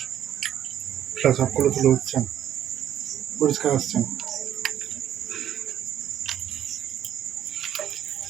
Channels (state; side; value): quieter; left; 10.6 dB